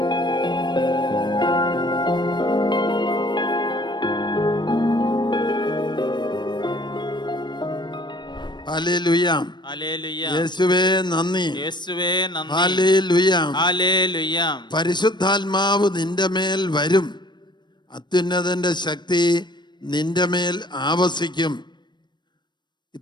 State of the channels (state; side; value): late; right; 0.22 ms